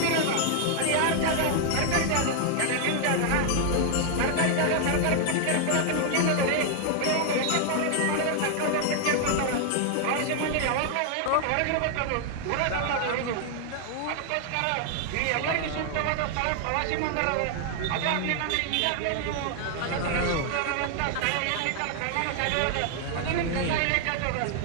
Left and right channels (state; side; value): different; both; correlation 0.00